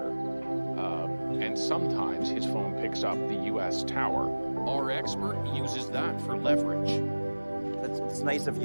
and sometimes his phone picks up the U.S. tower. Our expert uses that for leverage. It's nice of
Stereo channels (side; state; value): both; inverted; correlation -1.00